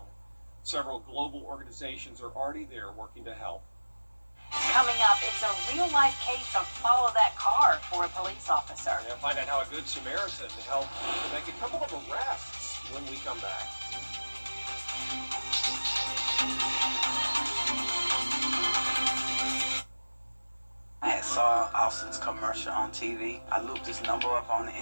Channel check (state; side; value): inverted; both; correlation -1.00